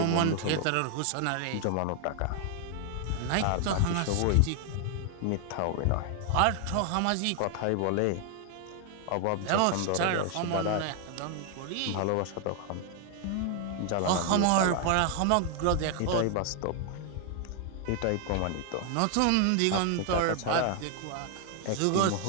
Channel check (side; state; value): both; different; correlation 0.00